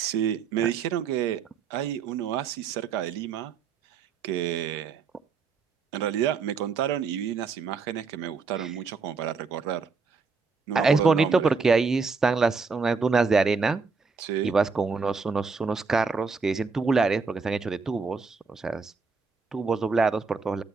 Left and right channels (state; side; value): quieter; left; 4.9 dB